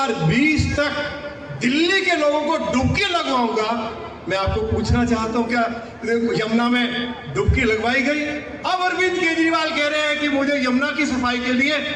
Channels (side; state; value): both; identical; correlation 1.00